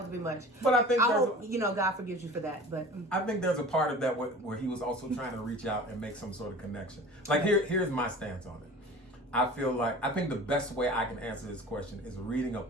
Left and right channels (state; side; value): normal; both; correlation 0.39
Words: a bit much. But I think God forgives you for that. But I think there's a part of that where he was also trying to reach out and make some sort of connection. Like here's my stance on it. I think the best way I can answer this question is reading a